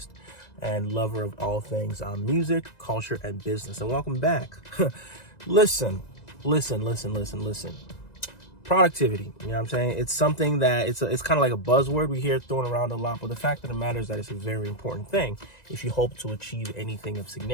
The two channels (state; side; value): late; right; 1.9 ms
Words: and lover of all things music, culture, and business. And welcome back. Listen. Productivity, you know what I'm saying? It's something that it's kind of like a buzzword we hear thrown around a lot, but the fact of the matter is that it's a very important thing. If you hope to achieve anything of